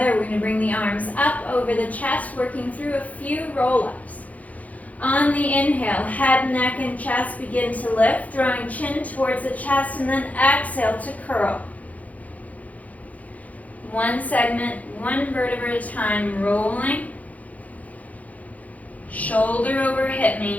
We're going to bring the arms up over the chest, working through a few roll-ups. On the inhale, head, neck, and chest begin to lift, drawing chin towards the chest, and then exhale to curl. One segment, one vertebra at a time, rolling. Shoulder over hip,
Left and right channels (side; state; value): right; late; 0.072 ms